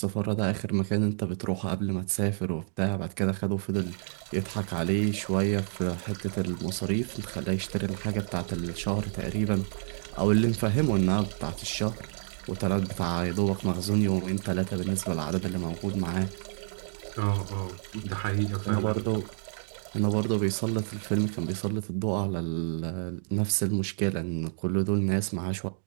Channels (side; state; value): left; silent; digital silence